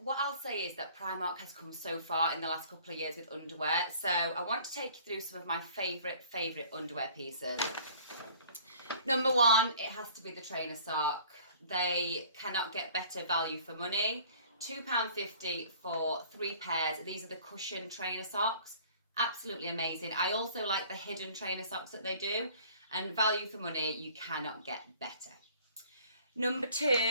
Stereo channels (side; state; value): both; inverted; correlation -0.51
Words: I'll say is that Primark has come so far in the last couple of years with underwear. So I want to take you through some of my favourite underwear pieces. Number 1, it has to be the trainer sock. They cannot get better value for money. £2.50 for 3 pairs. These are the cushion trainer socks. Absolutely amazing. I also like the hidden trainer socks that they do. And value for money, you cannot get better. Number